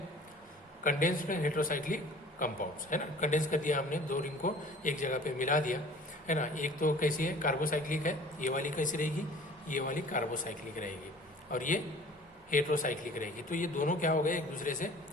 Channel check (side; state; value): both; normal; correlation 0.47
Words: कंडेंस्ड हेटेरोसाइक्लिक कंपाउंड्स, है ना। कंडेंस कर दिया हमने, 2 रिंग को एक जगह पे मिला दिया, है ना। एक तो कैसी है? कार्बोसाइक्लिक है, ये वाली कैसी रहेगी? ये वाली कार्बोसाइक्लिक रहेगी और ये हेट्रोसाइक्लिक रहेगी। तो ये दोनों क्या हो गए, एक दूसरे से